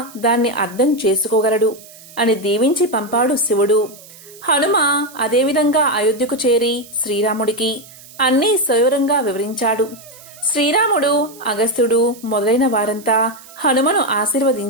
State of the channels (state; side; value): noise; right; hiss, 21 dB below the sound